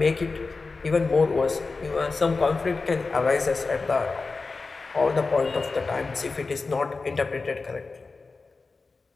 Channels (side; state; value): right; quieter; 4.0 dB